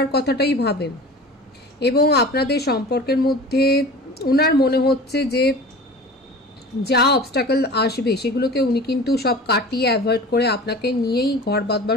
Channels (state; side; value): normal; both; correlation 0.38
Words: কথাটাই ভাবেন। এবং আপনাদের সম্পর্কের মধ্যে ওনার মনে হচ্ছে যে যা অবস্টাকল আসবে সেগুলোকে উনি কিন্তু সব কাটিয়ে অ্যাভয়েড করে আপনাকে নিয়েই ঘর বাঁধবার